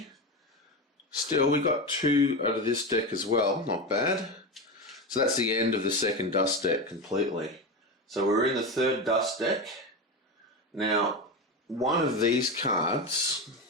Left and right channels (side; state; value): both; normal; correlation 0.18